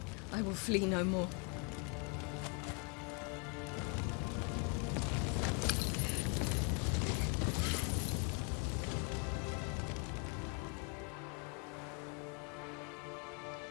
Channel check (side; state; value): right; quieter; 35.8 dB